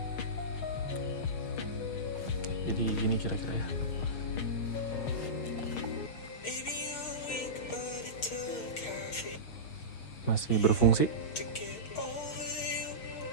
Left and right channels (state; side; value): late; right; 6.4 ms